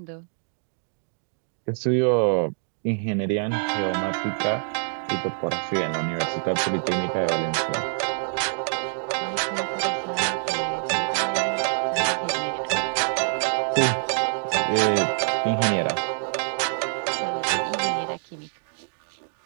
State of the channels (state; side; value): silent; left; digital silence